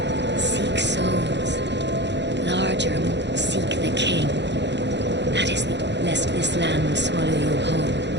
Seek souls. Larger, seek the king. That is lest this land swallow you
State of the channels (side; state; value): left; late; 0.51 ms